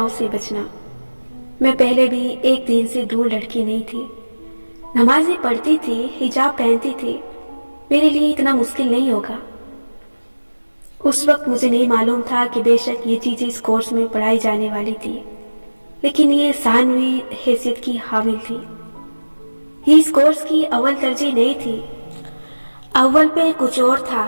से बचना। मैं पहले भी एक दीन से दूर लड़की नहीं थी, नमाज़ें पढ़ती थी, हिजाब पहनती थी, मेरे लिए इतना मुश्किल नहीं होगा। उस वक्त मुझे नहीं मालूम था कि बेशक ये चीज़ें इस कोर्स में पढ़ाई जाने वाली थी, लेकिन ये सानवी हैसियत की हामिल थी। ये इस कोर्स की अव्वल तरजीह नहीं थी, अव्वल पे कुछ और था,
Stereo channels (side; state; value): both; inverted; correlation -1.00